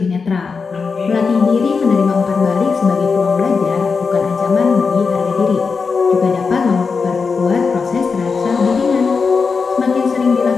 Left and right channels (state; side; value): quieter; right; 5.0 dB